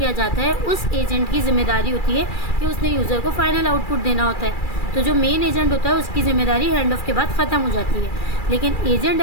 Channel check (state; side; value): late; right; 2.3 ms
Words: जाता है उस एजेंट की जिम्मेदारी होती है कि उसने यूज़र को फाइनल आउटपुट देना होता है। तो जो मेन एजेंट होता है उसकी ज़िम्मेदारी हैंड ऑफ के बाद ख़त्म हो जाती है। लेकिन एजेंट